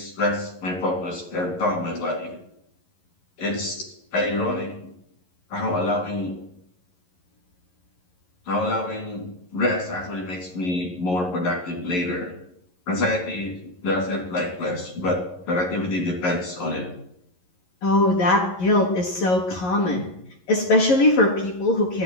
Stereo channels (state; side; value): late; right; 11 ms